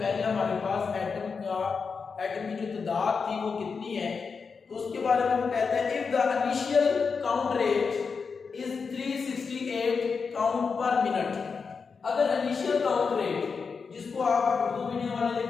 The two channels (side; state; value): right; quieter; 5.3 dB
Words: हमारे पास एटम की जो तादाद थी वो कितनी है, तो उसके बारे में वो कहते हैं if the initial count rate is 368 count पर मिनट। अगर इनिशियल काउंट रेट जिसको आप उर्दू मीडियम वाले